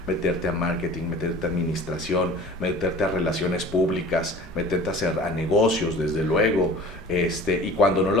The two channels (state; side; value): normal; both; correlation 0.43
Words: meterte a marketing, meterte a administración, meterte a relaciones públicas, meterte a negocios, desde luego. Y cuando no